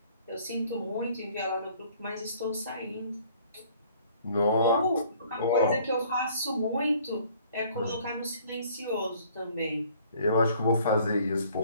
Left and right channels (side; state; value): both; inverted; correlation -0.57